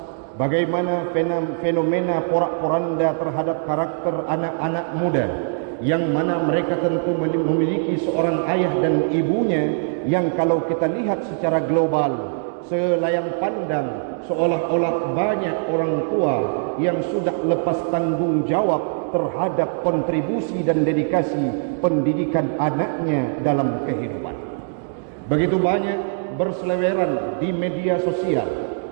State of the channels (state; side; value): silent; left; digital silence